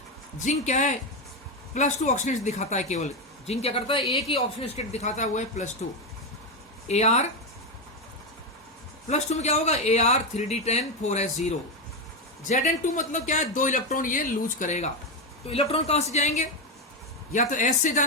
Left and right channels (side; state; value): both; normal; correlation 0.09